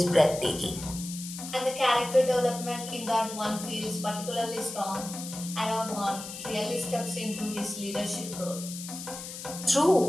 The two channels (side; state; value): left; noise; hiss, 10 dB below the sound